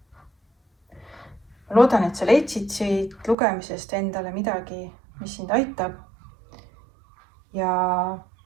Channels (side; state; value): left; drops out; at 3.4 s